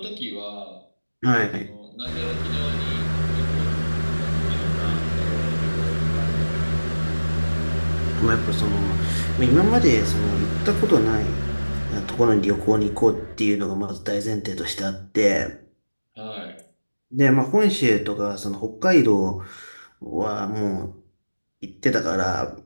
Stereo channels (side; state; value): both; inverted; correlation -1.00